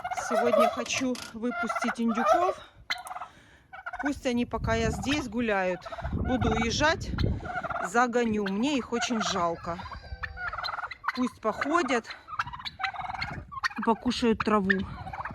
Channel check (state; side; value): identical; both; correlation 1.00